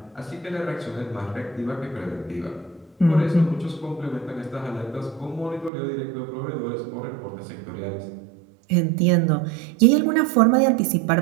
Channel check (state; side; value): drops out; left; at 5.7 s